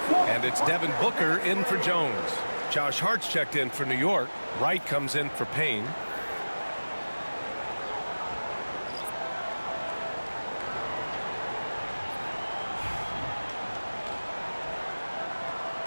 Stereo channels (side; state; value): both; inverted; correlation -1.00